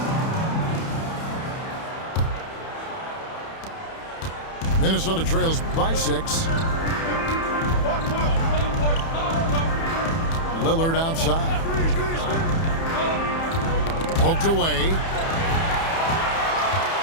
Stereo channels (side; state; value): right; late; 30 ms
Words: Minnesota trails by 6. Lillard outside. Poked away.